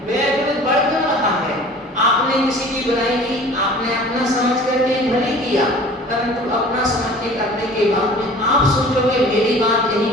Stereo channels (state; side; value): normal; both; correlation 0.45